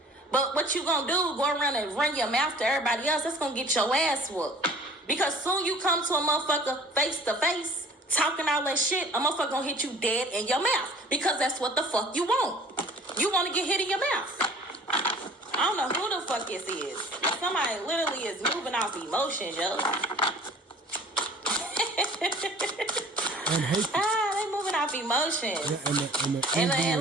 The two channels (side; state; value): both; normal; correlation 0.48